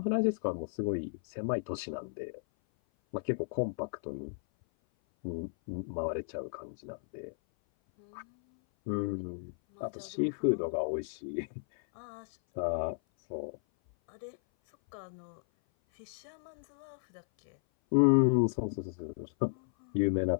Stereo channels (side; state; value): right; silent; 55 dB below the other